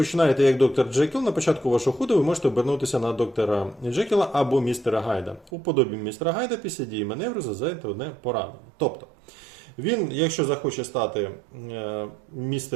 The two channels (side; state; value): left; drops out; at 5.5 s